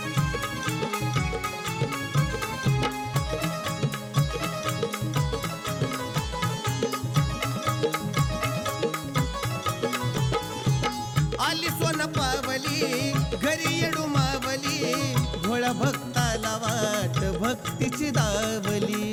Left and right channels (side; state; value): both; identical; correlation 1.00